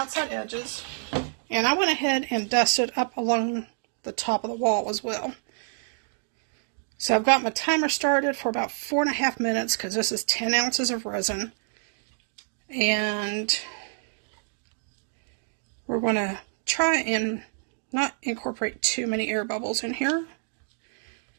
edges, and I went ahead and dusted up along the top of the wall as well. So I've got my timer started for about 4.5 minutes because this is 10 ounces of resin. And we're going to try and not incorporate too many air bubbles in here.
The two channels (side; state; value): left; silent; digital silence